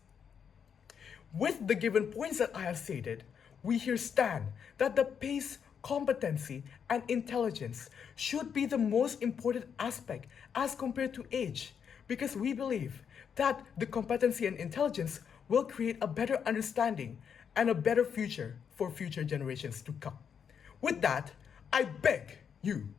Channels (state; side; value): quieter; right; 7.3 dB